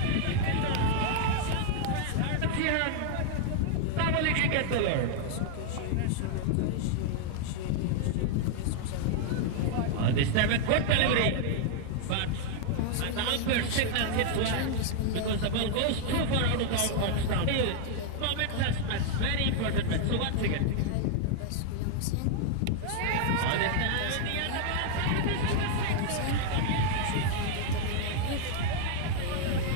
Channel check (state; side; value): different; both; correlation 0.00